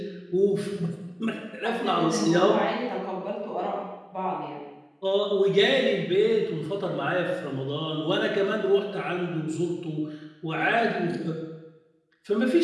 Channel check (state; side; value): identical; both; correlation 1.00